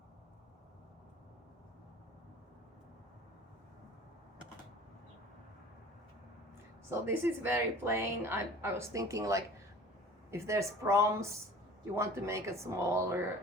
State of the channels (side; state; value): both; normal; correlation 0.44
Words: So this is very plain. I was thinking, like, if there's proms, you want to make a smaller